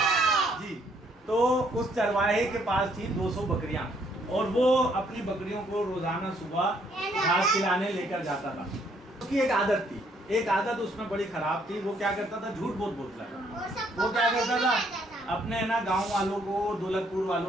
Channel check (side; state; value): both; normal; correlation 0.68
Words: जी। तो उस चरवाहे के पास थी 200 बकरियां और वो अपनी बकरियों को रोजाना सुबह घास खिलाने लेकर जाता था। उसकी एक आदत थी, एक आदत उसमें बड़ी खराब थी। वो क्या करता था? झूठ बहुत बोलता था। वो क्या करता था? अपने है ना गांव वालों को, दौलतपुर